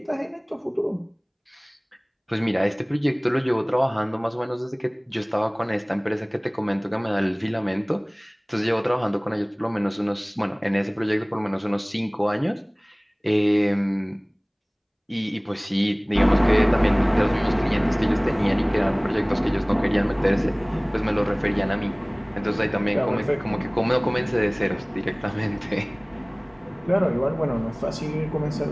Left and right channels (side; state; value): both; identical; correlation 1.00